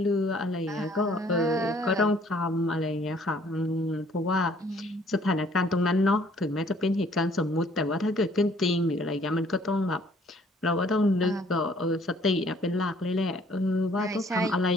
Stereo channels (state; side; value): normal; both; correlation 0.60